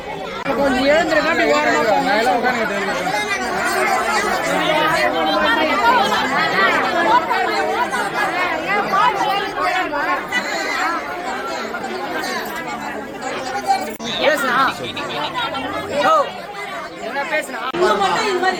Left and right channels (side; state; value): both; identical; correlation 1.00